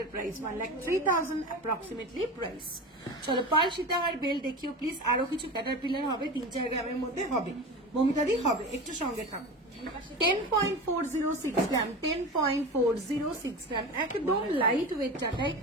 প্রাইস, 1,03,000 অ্যাপ্রক্সিমেটলি প্রাইস। চলো পার্ল সীতাহার বেল দেখিও প্লিজ। আরো কিছু ক্যাটারপিলার হবে, 3-4 গ্রামের মধ্যে হবে, মমিতাদি হবে, একটু সঙ্গে থাকো। 10.406 গ্রাম, 10.406 গ্রাম, একদম লাইট ওয়েট চাটাই,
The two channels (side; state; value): both; normal; correlation 0.28